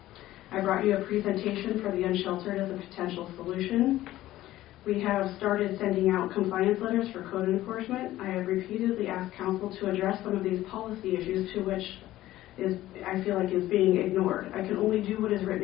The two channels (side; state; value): right; quieter; 15.1 dB